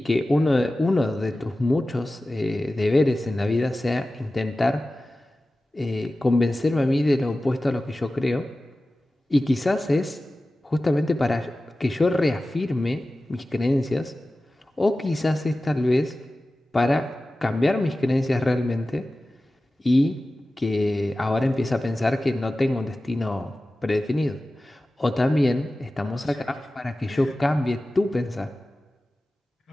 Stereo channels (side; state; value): both; normal; correlation 0.96